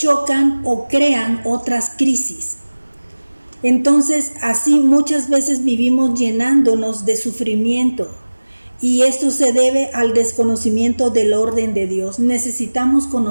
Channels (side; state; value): both; inverted; correlation -1.00